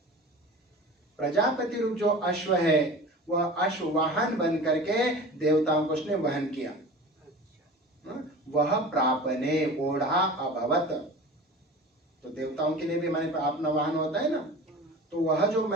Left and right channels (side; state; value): both; normal; correlation 0.37